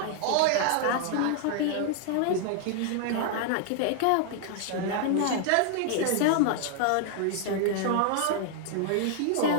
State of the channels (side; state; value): both; different; correlation 0.00